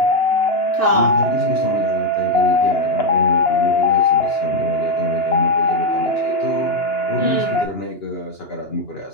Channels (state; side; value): late; right; 2.9 ms